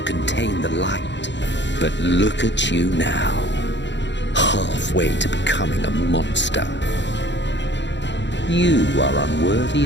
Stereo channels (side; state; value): right; late; 0.52 ms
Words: contain the light. But look at you now, halfway to becoming a monster. You are unworthy